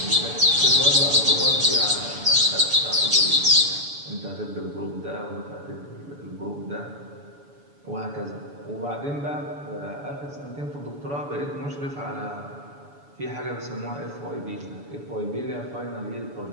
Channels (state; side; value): late; left; 7.0 ms